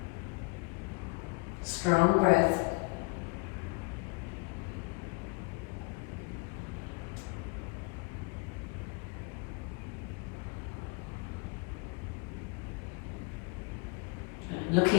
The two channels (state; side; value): quieter; right; 29.6 dB